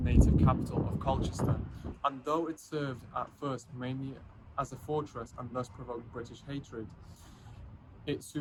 capital of Colchester, and though it served at first mainly as a fortress and thus provoked British hatred, it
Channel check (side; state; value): both; identical; correlation 1.00